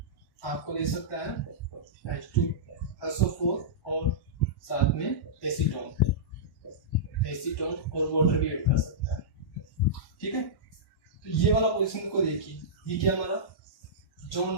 आपको दे सकता है H2SO4 और साथ में एसीटोन और वाटर भी ऐड कर सकता है। ठीक है, तो ये वाला पोजीशन को देखिए, ये क्या हमारा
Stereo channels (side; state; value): right; late; 1.1 ms